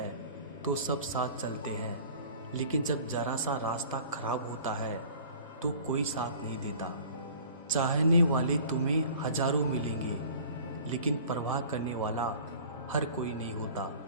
तो सब साथ चलते हैं, लेकिन जब जरा सा रास्ता खराब होता है तो कोई साथ नहीं देता। चाहने वाले तुम्हें हजारों मिलेंगे, लेकिन परवाह करने वाला हर कोई नहीं होता।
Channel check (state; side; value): inverted; both; correlation -0.46